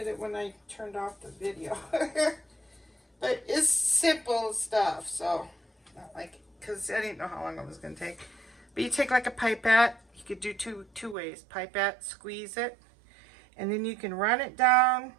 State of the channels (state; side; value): drops out; left; at 11.2 s